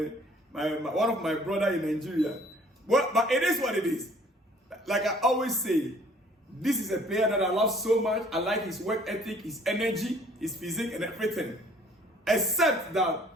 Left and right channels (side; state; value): both; normal; correlation 0.56